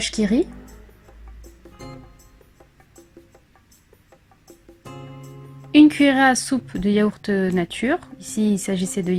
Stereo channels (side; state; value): both; identical; correlation 1.00